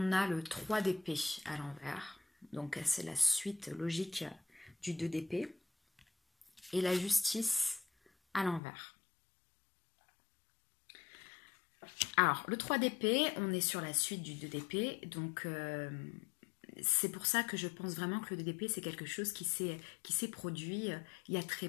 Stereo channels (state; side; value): drops out; right; at 8.6 s